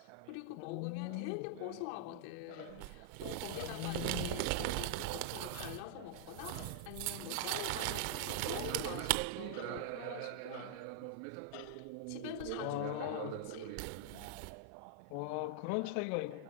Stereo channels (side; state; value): both; different; correlation -0.01